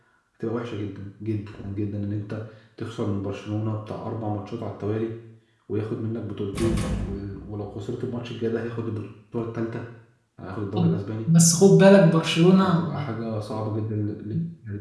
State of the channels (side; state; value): both; identical; correlation 1.00